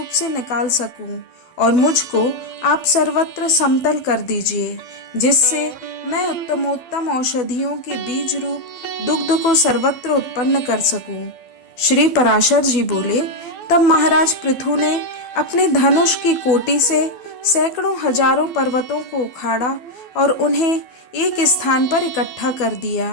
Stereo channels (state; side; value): late; right; 12 ms